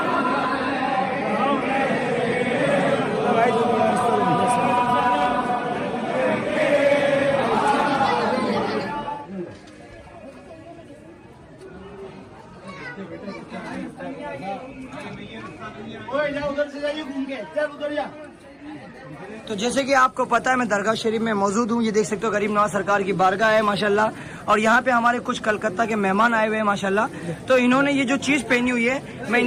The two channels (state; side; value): identical; both; correlation 1.00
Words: तो जैसे कि आपको पता है मैं दरगाह शरीफ में मौजूद हूँ। ये देख सकते हो गरीब नवाज सरकार की बारगाह है माशाल्लाह, और यहाँ पे हमारे कुछ कलकत्ता के मेहमान आए हुए हैं माशाल्लाह। तो इन्होंने ये जो चीज पहनी हुई है मैं